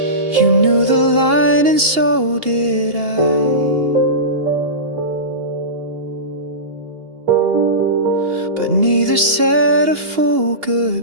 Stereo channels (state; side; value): late; left; 2.8 ms